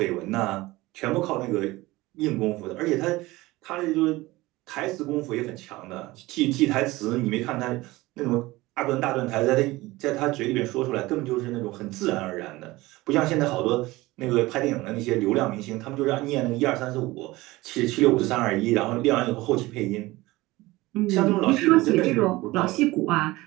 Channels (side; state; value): left; quieter; 19.8 dB